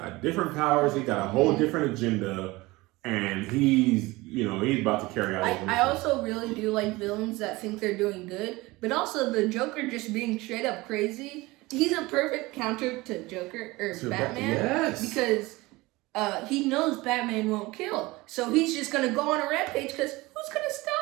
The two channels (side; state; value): left; quieter; 21.3 dB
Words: different powers. He got a whole different agenda. And he's about to carry out. I also really do like villains that think they're doing good, but also the Joker just being straight up crazy. He's a perfect counter to Joker or Batman. Yes. Because he knows Batman won't kill, so he's just gonna go on a rampage. Because who's gonna